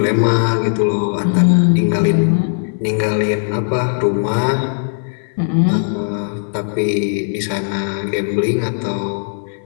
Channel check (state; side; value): silent; right; 59 dB below the other